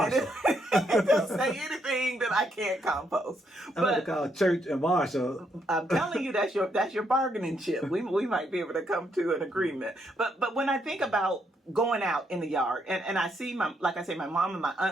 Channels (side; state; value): both; normal; correlation 0.76